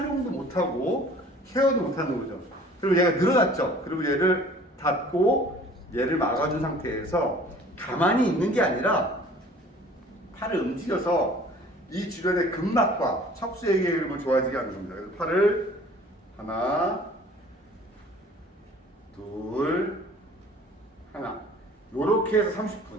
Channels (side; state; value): both; normal; correlation 0.49